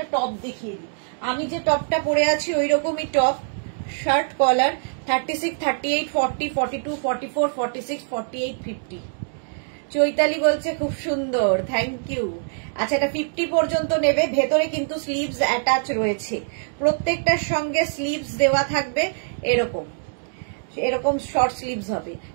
টপ দেখিয়ে দিই। আমি যে টপটা পরে আছি ওই রকমই টপ, শার্ট কলার, 36, 38, 40, 42, 44, 46, 48, 50। চৈতালি বলছে খুব সুন্দর, থ্যাংক ইউ। আচ্ছা, এটা 50 পর্যন্ত নেবে। ভেতরে কিন্তু স্লিভস অ্যাটাচ রয়েছে, প্রত্যেকটার সঙ্গে স্লিভস দেওয়া থাকবে। এরকম শর্ট স্লিভস হবে,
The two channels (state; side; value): silent; left; digital silence